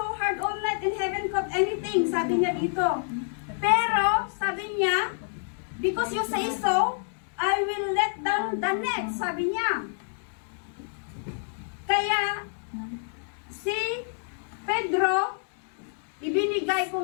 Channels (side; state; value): right; silent; digital silence